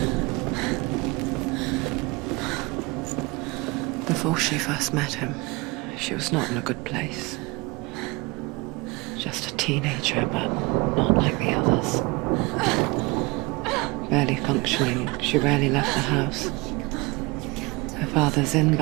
Before she first met him, she was not in a good place. Just a teenager, but not like the others. Barely functioning, she rarely left the house. Her father's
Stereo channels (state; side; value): quieter; left; 25.3 dB